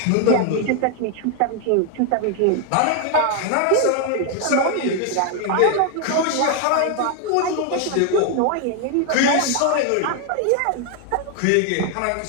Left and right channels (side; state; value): both; different; correlation 0.01